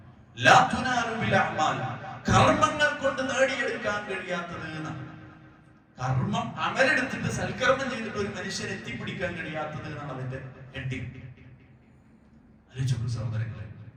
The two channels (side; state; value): both; identical; correlation 1.00